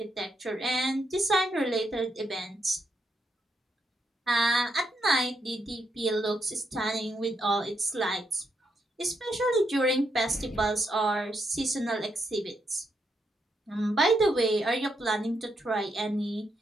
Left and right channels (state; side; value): normal; both; correlation 0.79